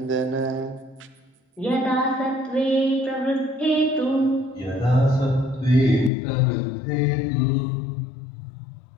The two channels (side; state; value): right; drops out; at 6.1 s